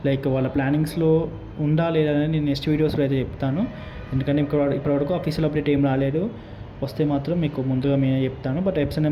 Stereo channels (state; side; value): identical; both; correlation 1.00